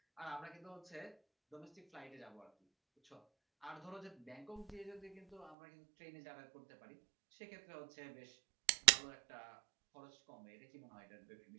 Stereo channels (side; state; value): left; drops out; at 5.6 s